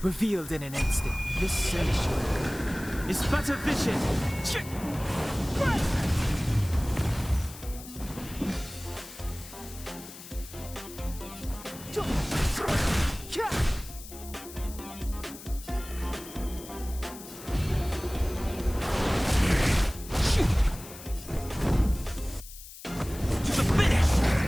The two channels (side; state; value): left; noise; hiss, 15 dB below the sound